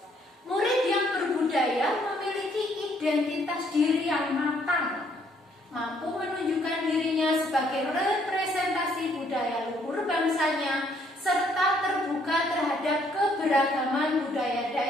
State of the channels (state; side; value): normal; both; correlation 0.67